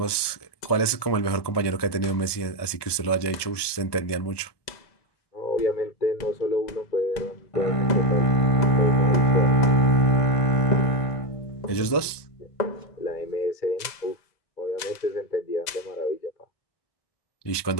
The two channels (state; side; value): late; right; 1.2 ms